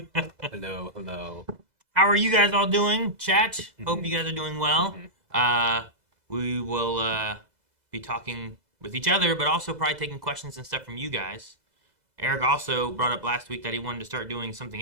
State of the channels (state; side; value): late; left; 2.0 ms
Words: Hello. How are you guys all doing? Chat. Hope you guys are doing well. We will be talking with each other, but also probably taking questions and stuff from you guys. Eric also brought up last week that he wanted to start doing something